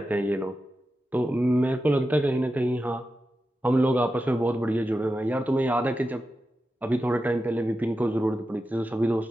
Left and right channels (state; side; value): normal; both; correlation 0.91